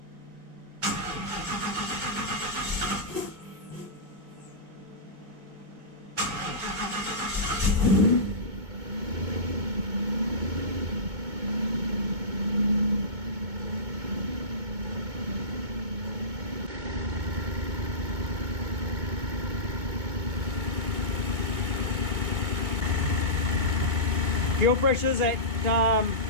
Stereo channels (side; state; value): left; late; 2.2 ms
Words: Fuel pressure's at